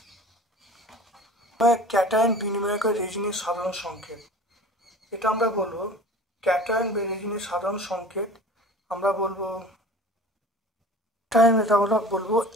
ক্যাটায়ন বিনিময়কের রেজিনের সাধারণ সংকেত, এটা আমরা বলবো ক্যাটায়ন বা রেজিনের সাধারণ সংকেত আমরা বলবো টাইম এটা আমরা বলবো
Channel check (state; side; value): normal; both; correlation 0.41